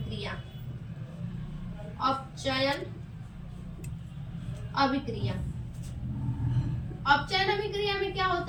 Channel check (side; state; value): both; identical; correlation 1.00